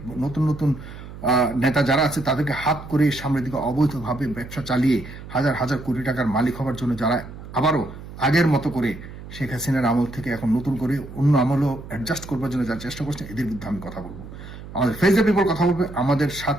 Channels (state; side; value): noise; right; hum, 14 dB below the sound